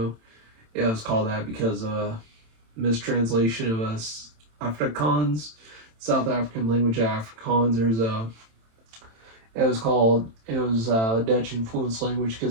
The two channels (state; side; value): late; left; 27 ms